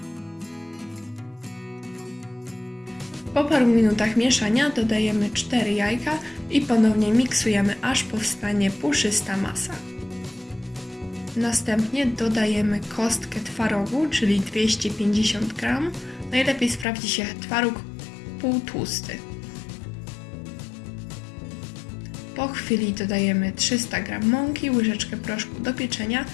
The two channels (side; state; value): right; drops out; at 16.9 s